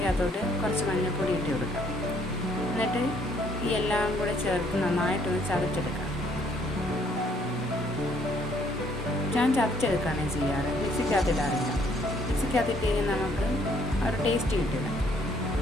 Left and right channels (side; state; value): both; normal; correlation 0.65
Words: കുറച്ച് മഞ്ഞൾപ്പൊടി ഇട്ട് കൊടുക്കാം. എന്നിട്ട് ഈ എല്ലാം കൂടെ ചേർത്ത് നന്നായിട്ടൊന്ന് ചതച്ചെടുക്കാം. ഞാൻ ചതച്ചെടുക്കുകയാണ് ചെയ്യാറ്, മിക്സിക്കകത്തിടാറില്ല. മിക്സിക്കകത്തിട്ട് കഴിഞ്ഞാൽ നമുക്ക് ഒരു ടേസ്റ്റ് കിട്ടില്ല.